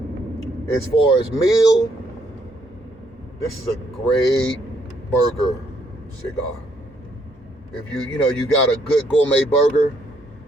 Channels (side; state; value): both; normal; correlation 0.71